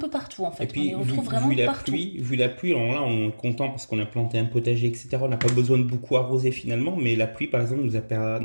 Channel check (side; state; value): both; inverted; correlation -1.00